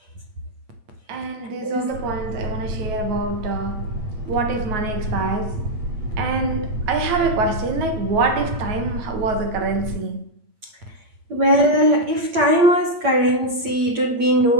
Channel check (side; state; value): left; late; 8.7 ms